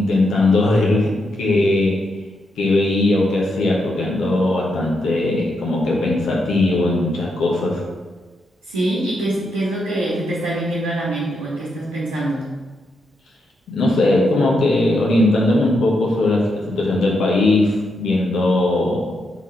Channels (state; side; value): normal; both; correlation 0.82